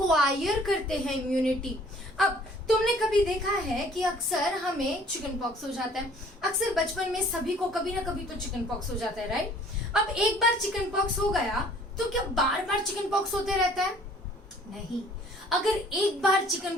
करते हैं इम्यूनिटी। अब तुमने कभी देखा है कि अक्सर हमें चिकन पॉक्स हो जाता है, अक्सर बचपन में सभी को कभी ना कभी तो चिकन पॉक्स हो जाता है, राइट? अब एक बार चिकन पॉक्स हो गया तो क्या बार बार चिकन पॉक्स होते रहता है? नहीं। अगर एक बार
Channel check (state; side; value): normal; both; correlation 0.55